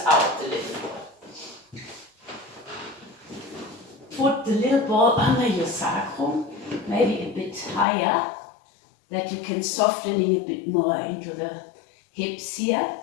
the little ball. Put the little ball under your sacrum, maybe a bit higher, that you can softening a bit more into the hips here,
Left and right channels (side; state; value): right; drops out; at 7.9 s